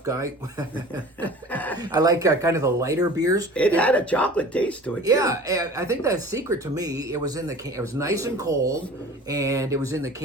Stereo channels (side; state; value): both; normal; correlation 0.42